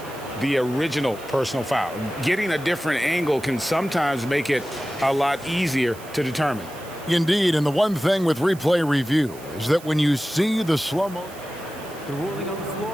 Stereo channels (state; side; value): noise; right; hiss, 20 dB below the sound